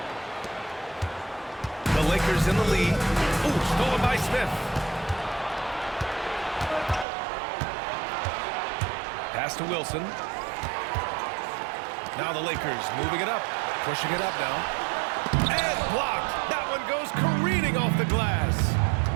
The Lakers in the lead. Ooh, stolen by Smith. Pass to Wilson. Now the Lakers moving it up. Pushing it up now. And blocked. That one goes careening off the glass.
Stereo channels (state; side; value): drops out; left; at 7.1 s